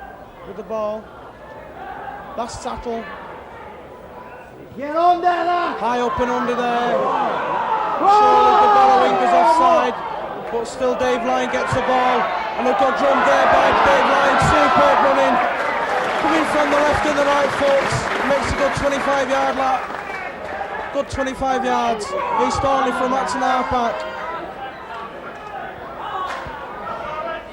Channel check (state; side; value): identical; both; correlation 1.00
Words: with the ball. Last tackle. Get on there! High up and under there. Surely the Barrow wing is offside, but still Dave Lyon gets the ball. And a good run there by Dave Lyon. Superb running. Coming from the left and the right foot. Makes a good 25-yard lap. Good 25 yards. He's Thornley from Acton halfback.